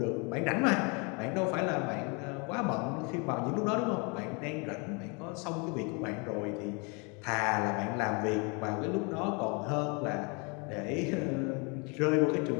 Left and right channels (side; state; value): right; quieter; 32.4 dB